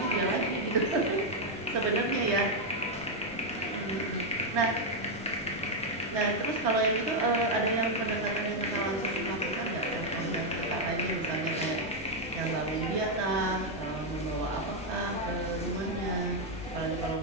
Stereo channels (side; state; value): both; normal; correlation 0.01